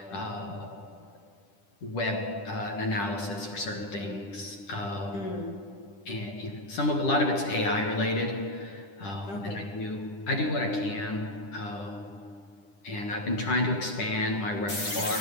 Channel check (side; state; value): right; late; 10 ms